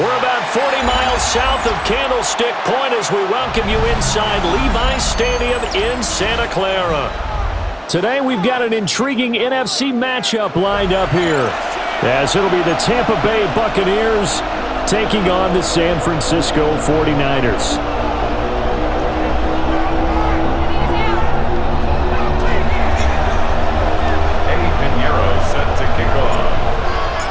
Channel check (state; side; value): identical; both; correlation 1.00